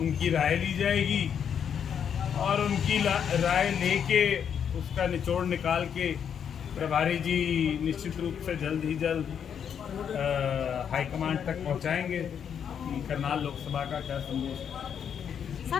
उनकी राय ली जाएगी और उनकी राय लेके उसका निचोड़ निकाल के प्रभारी जी निश्चित रूप से जल्द ही जल्द हाईकमांड तक पहुंचाएंगे कि करनाल लोकसभा का क्या संदेश है।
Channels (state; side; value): quieter; right; 8.0 dB